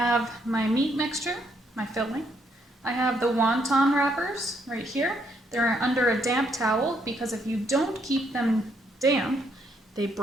my meat mixture, my filling. I have the wonton wrappers right here. They're under a damp towel because if you don't keep them damp, they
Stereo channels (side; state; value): both; normal; correlation 0.73